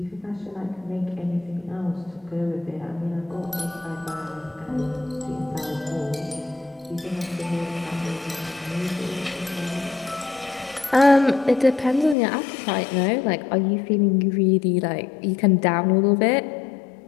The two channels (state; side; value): drops out; right; at 12.2 s